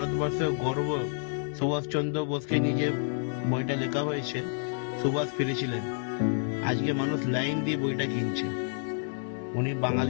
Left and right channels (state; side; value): silent; right; 58 dB below the other